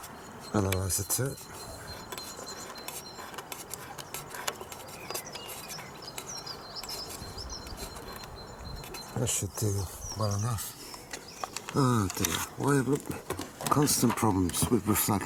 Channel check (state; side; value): identical; both; correlation 1.00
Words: analyzer to it. That should do well enough. Oh dear, why look, constant problems with